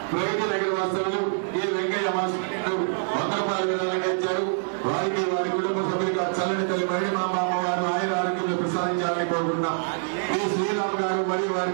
వాసులు ఈ వెంకయ్య మాస్టర్లు 100 రూపాయలు ఇచ్చారు. వారికి వారి కుటుంబ సభ్యులుగా చల్లని తల్లి మరడి మా అమ్మవారు ఆయుర ఆరోగ్యాలు ప్రసాదించాలని కోరుకుంటున్నాం. ఈ శ్రీరామ్ గారు మరియు వారి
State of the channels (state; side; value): silent; left; digital silence